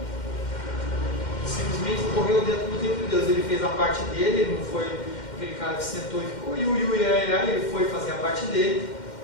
Simplesmente correu dentro do tempo de Deus. Ele fez a parte dele, ele não foi aquele cara que sentou e ficou ele foi fazer a parte dele,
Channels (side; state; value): right; late; 2.1 ms